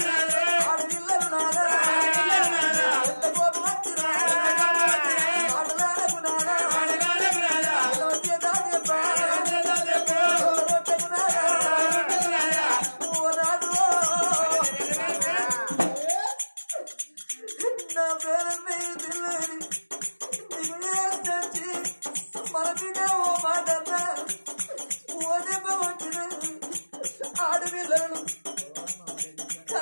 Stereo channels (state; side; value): inverted; both; correlation -1.00